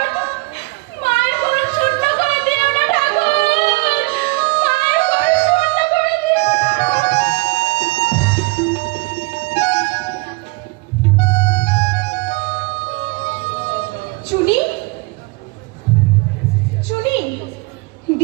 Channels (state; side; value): quieter; left; 24.9 dB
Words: মায়ের ঘর শূন্য করে দিও না ঠাকুর, মায়ের ঘর শূন্য করে দিও না। চুনি, চুনি,